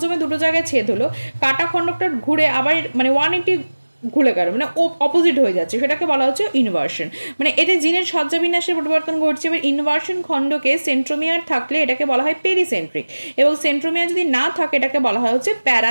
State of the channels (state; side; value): inverted; both; correlation -1.00